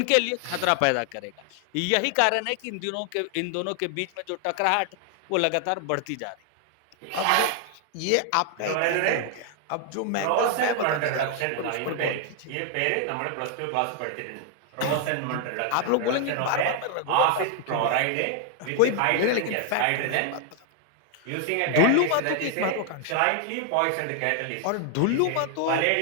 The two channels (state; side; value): different; both; correlation 0.00